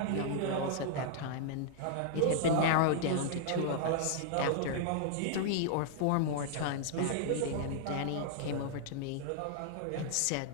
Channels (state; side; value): different; both; correlation -0.01